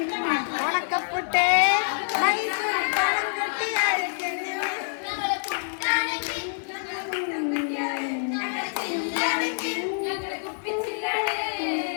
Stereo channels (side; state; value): right; silent; digital silence